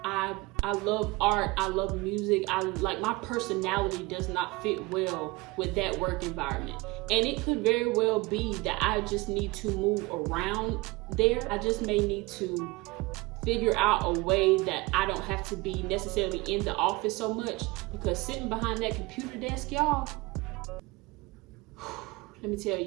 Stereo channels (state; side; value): quieter; left; 23.3 dB